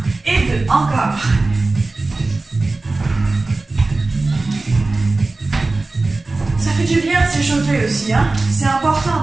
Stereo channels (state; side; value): quieter; left; 3.3 dB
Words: et 2. Encore. Ça fait du bien de s'échauffer aussi, hein. C'est important